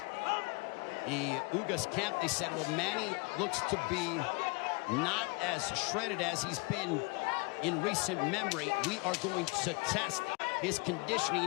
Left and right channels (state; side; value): quieter; right; 29.5 dB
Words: the Ugas camp, they said, well, Manny looks to be not as shredded as he's been in recent memory. We are going to test his